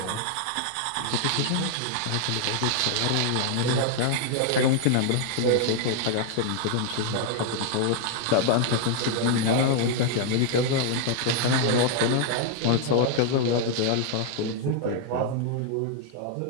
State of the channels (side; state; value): both; different; correlation 0.00